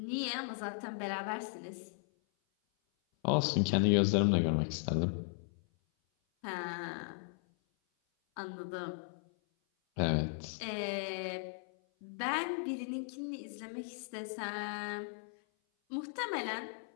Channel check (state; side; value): silent; right; 53 dB below the other